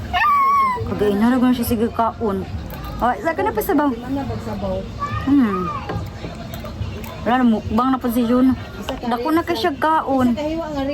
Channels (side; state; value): both; identical; correlation 1.00